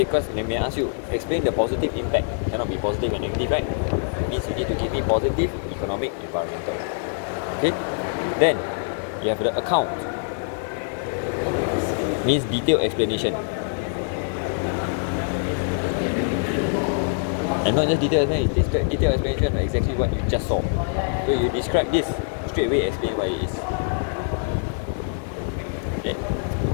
they may ask you, explain the positive impact. Cannot be positive and negative, right? It means you need to give me positive, economic, environmental. Okay? Then, you have the account. Means detailed explanation. And not just detailed explanation, it's detailed explanation of exactly what you just saw. So you describe this, straight away explain what it is. Okay.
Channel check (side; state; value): right; silent; digital silence